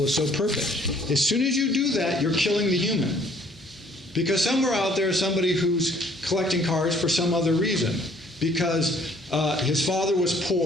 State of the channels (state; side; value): normal; both; correlation 0.60